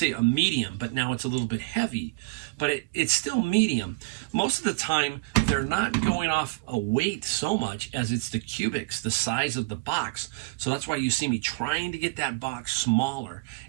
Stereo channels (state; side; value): quieter; left; 27.4 dB